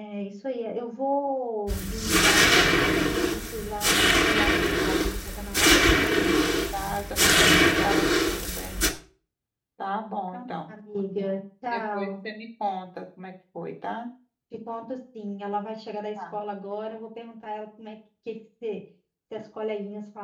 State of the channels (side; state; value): both; identical; correlation 1.00